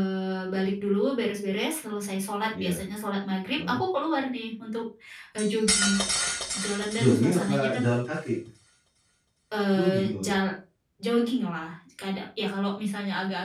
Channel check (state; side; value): identical; both; correlation 1.00